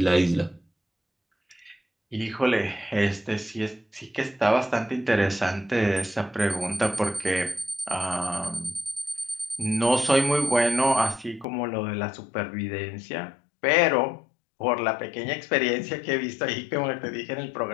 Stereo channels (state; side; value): drops out; right; at 11.5 s